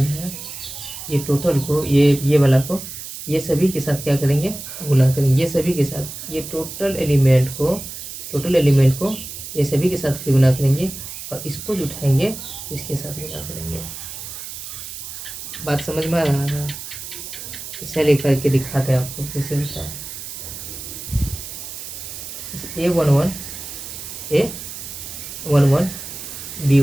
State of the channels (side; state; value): right; noise; hiss, 10 dB below the sound